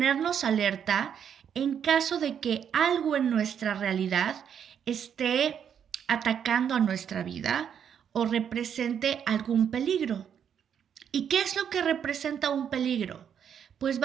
alerta en caso de que algo en nuestra realidad esté atacando a nuestra vida o represente algún peligro. ¿Y qué es lo que representa un peligro? Pues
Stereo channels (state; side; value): quieter; left; 8.3 dB